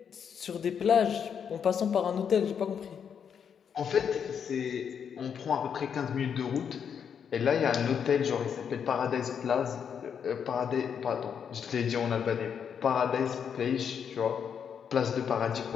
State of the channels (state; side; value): quieter; right; 7.5 dB